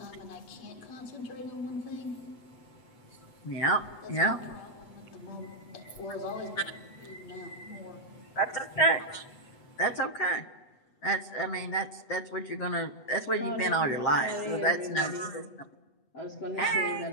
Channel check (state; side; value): late; right; 8.2 ms